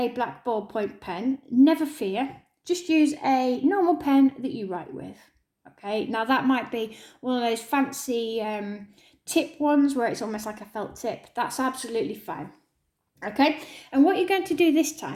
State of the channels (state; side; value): identical; both; correlation 1.00